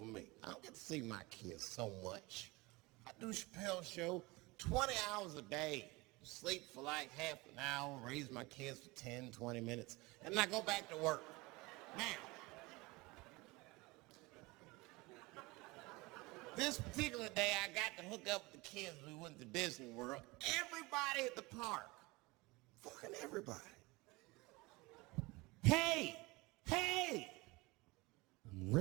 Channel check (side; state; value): left; quieter; 23.4 dB